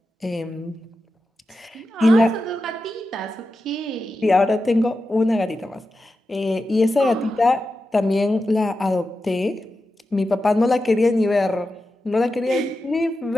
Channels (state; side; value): normal; both; correlation 0.91